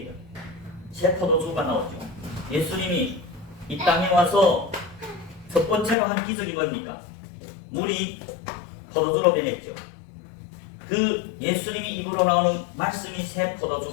새 포도주가 나오죠. 예수님이 이 땅에 와서 첫 번째로 한 기적이 뭡니까? 물이 포도주로 변했죠. 그 예수님이 입으로 나오는 말씀이 새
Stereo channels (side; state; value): right; drops out; at 6.0 s